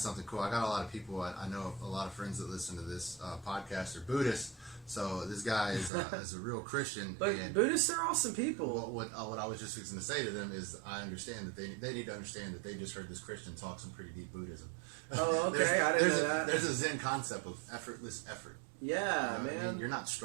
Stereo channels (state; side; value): drops out; left; at 5.9 s